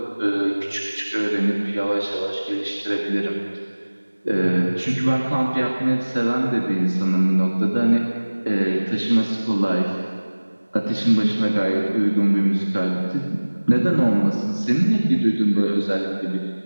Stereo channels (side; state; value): both; inverted; correlation -1.00